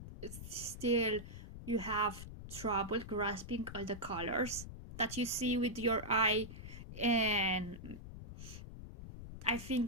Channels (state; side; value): noise; left; rumble, 11 dB below the sound